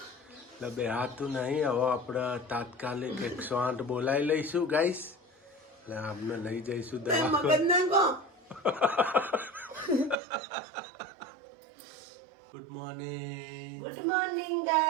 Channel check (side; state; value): left; drops out; at 10.2 s